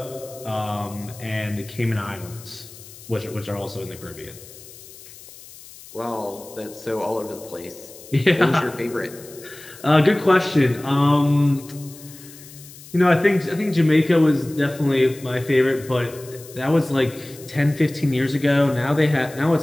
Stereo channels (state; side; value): noise; left; hiss, 19 dB below the sound